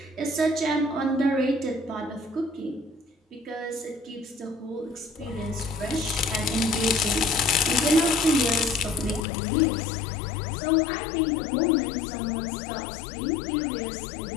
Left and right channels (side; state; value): right; drops out; at 9.2 s